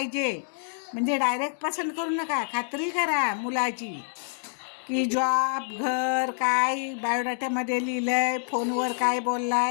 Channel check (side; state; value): right; silent; digital silence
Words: म्हणजे डायरेक्ट पसंत करू नका, खात्री करा मुलाची की जॉब, घर, काय बायोडाट्यामध्ये लिहिलं आहे, फोनवर काय बोलला